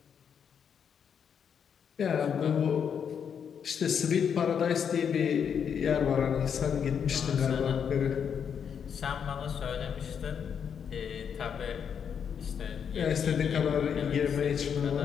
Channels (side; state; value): right; quieter; 7.5 dB